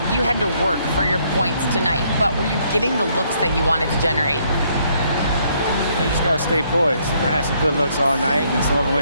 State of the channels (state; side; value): inverted; both; correlation -0.69